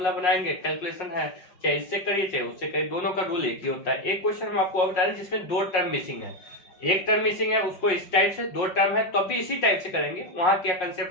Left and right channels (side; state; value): right; late; 5.5 ms